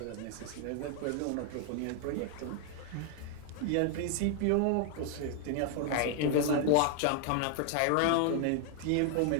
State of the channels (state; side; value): different; both; correlation 0.00